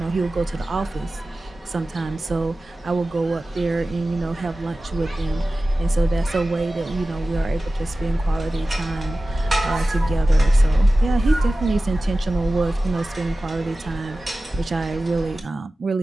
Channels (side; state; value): both; normal; correlation 0.96